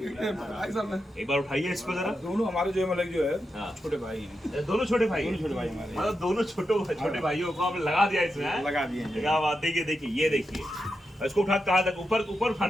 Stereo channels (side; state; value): both; normal; correlation 0.87